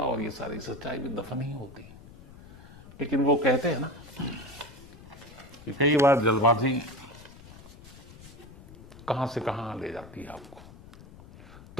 और ये सारी सच्चाई भी दफन ही होती। लेकिन वो कहते हैं ना कि कई बार जल्दबाजी कहां से कहां ले जाती है आपको।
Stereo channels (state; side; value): noise; left; rumble, 19 dB below the sound